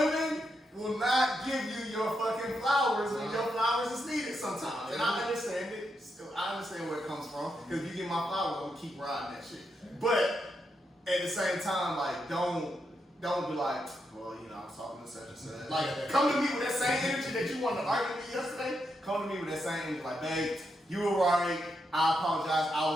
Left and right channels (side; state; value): both; normal; correlation 0.83